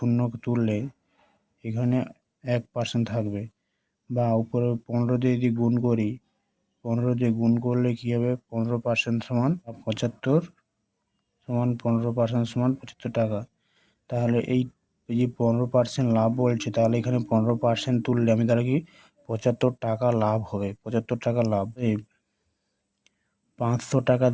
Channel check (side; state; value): both; identical; correlation 1.00